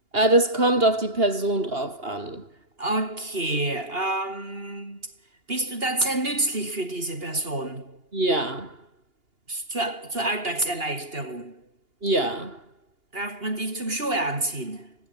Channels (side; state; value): left; late; 2.8 ms